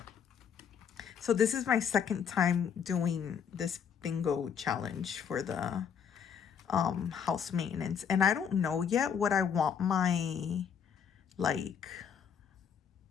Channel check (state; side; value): quieter; right; 7.5 dB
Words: So this is my second time doing this bingo challenge for the house maintenance. And I don't know yet what I want my, like,